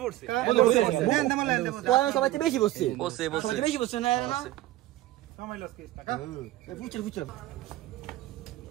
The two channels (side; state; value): left; quieter; 16.1 dB